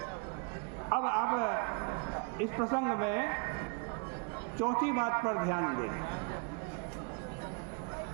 अब आप इस प्रसंग में चौथी बात पर ध्यान दें।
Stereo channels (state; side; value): quieter; left; 35.8 dB